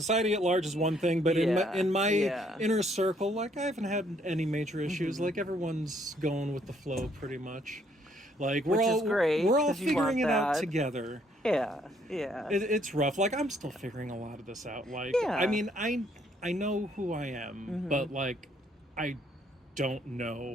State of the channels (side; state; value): both; normal; correlation 0.67